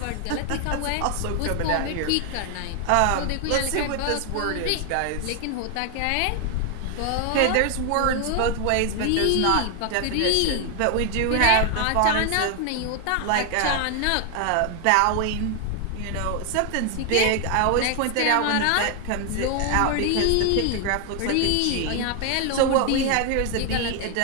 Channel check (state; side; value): different; both; correlation 0.00